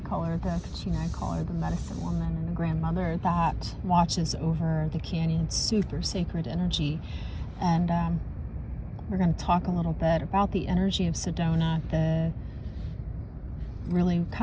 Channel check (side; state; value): both; identical; correlation 1.00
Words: call her the Kachina, I call her the medicine woman and the grandmother that watches over the canyon. Super sacred energy. And we're going to talk a little bit about the energy of Sedona, really